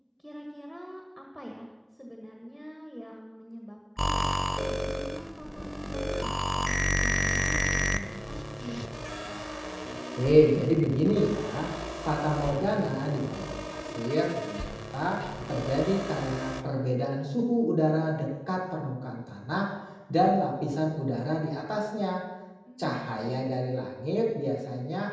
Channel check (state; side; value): identical; both; correlation 1.00